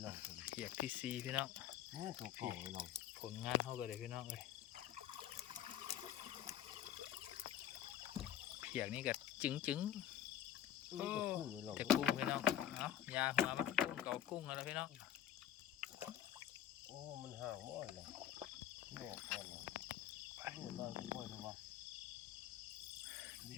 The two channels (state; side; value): quieter; right; 11.0 dB